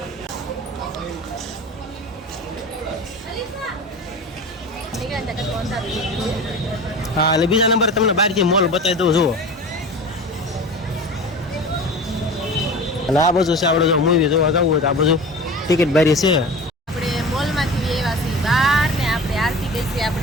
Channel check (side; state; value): both; normal; correlation 0.35